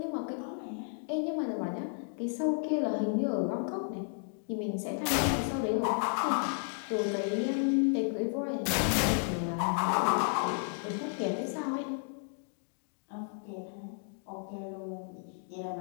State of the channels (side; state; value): right; silent; 56 dB below the other